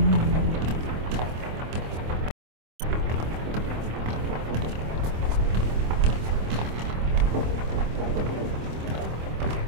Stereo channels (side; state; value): left; late; 26 ms